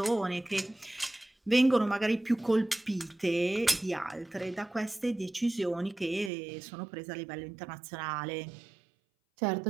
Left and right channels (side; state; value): left; drops out; at 6.3 s